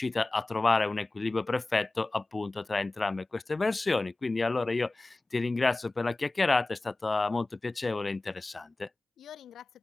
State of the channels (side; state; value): right; quieter; 3.1 dB